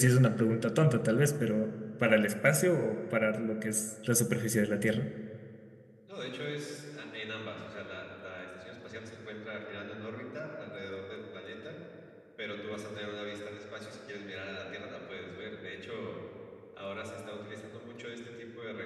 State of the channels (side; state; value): both; identical; correlation 1.00